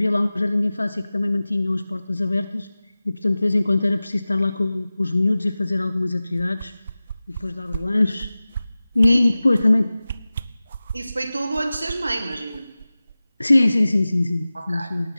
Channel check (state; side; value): inverted; both; correlation -0.97